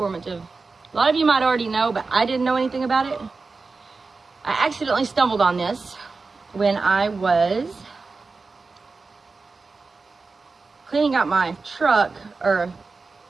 A lot of you might already know, but I didn't know anything about it. I accidentally stumbled on this when I was cleaning out my truck, or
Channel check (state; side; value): quieter; left; 4.1 dB